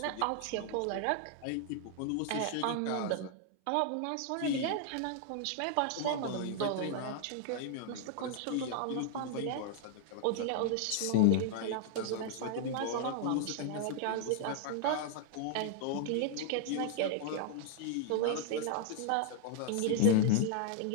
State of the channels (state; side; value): different; both; correlation 0.00